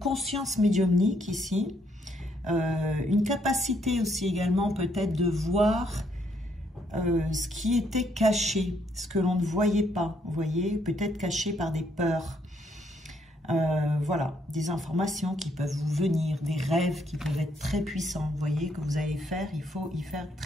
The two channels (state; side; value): normal; both; correlation 0.72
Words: médiumnique ici, une capacité aussi également peut-être de voir ce qui était caché, ce que l'on ne voyait pas, vous voyez, peut-être caché par des peurs. Voilà, des informations qui peuvent vous venir, des rêves qui peuvent être très puissants, vous voyez, que vous allez faire, il faut y faire